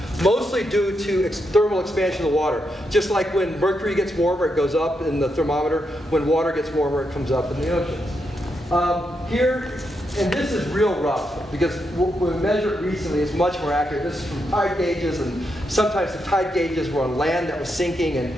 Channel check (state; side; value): normal; both; correlation 0.83